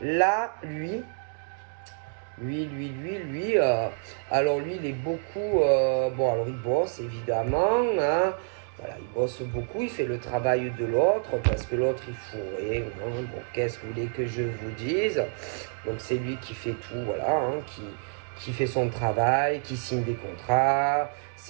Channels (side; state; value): left; silent; 56 dB below the other